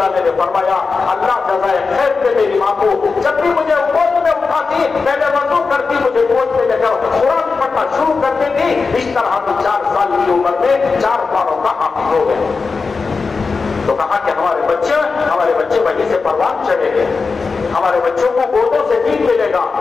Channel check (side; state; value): right; quieter; 4.5 dB